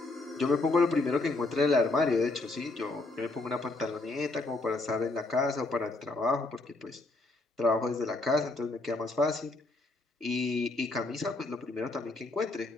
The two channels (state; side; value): quieter; right; 3.1 dB